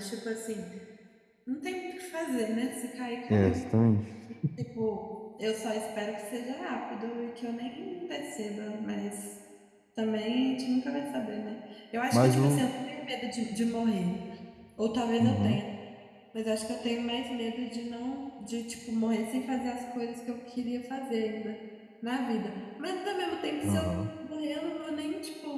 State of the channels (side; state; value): both; identical; correlation 1.00